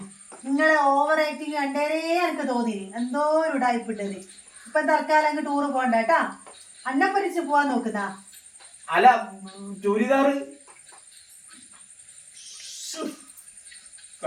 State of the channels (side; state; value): both; identical; correlation 1.00